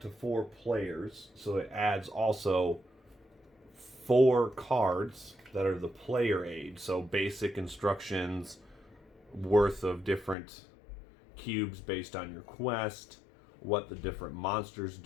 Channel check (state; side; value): drops out; right; at 10.4 s